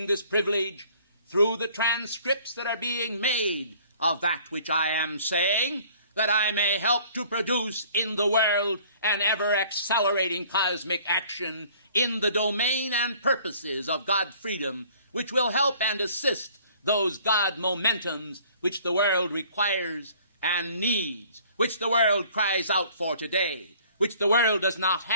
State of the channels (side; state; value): both; inverted; correlation -0.54